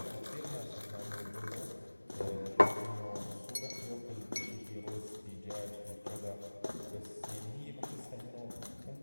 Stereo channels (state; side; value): inverted; both; correlation -1.00